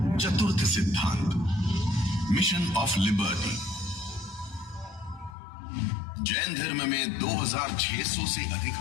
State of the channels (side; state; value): right; drops out; at 5.4 s